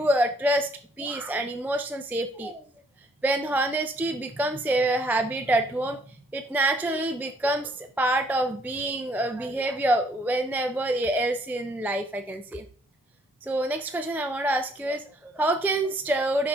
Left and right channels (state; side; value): normal; both; correlation 0.65